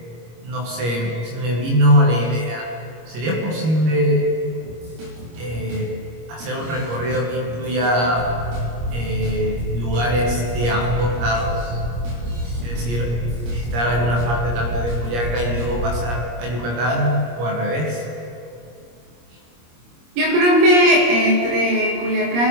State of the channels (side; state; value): left; late; 25 ms